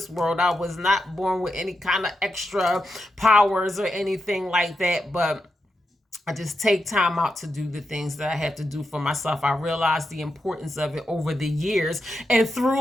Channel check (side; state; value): both; normal; correlation 0.86